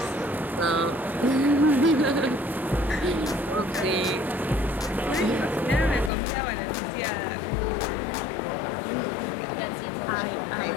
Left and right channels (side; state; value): right; drops out; at 6.1 s